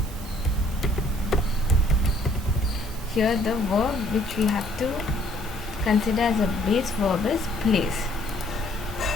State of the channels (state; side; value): normal; both; correlation 0.62